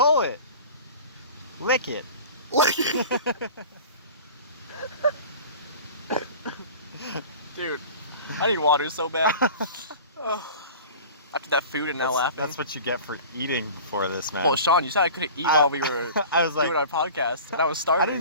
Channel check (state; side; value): inverted; both; correlation -0.39